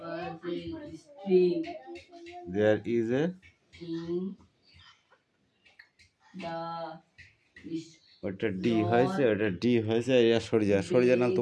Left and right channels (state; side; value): identical; both; correlation 1.00